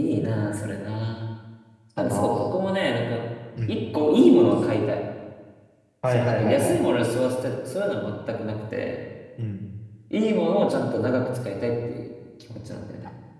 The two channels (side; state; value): both; identical; correlation 1.00